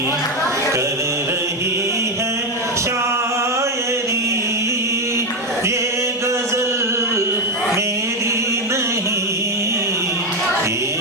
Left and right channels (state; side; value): normal; both; correlation 0.09